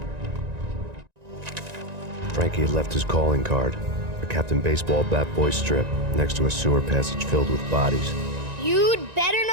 Frankie had left his calling card, a Captain Baseball bat boy strip, next to a sewer passage filled with bodies. You'd better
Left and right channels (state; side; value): late; left; 1.9 ms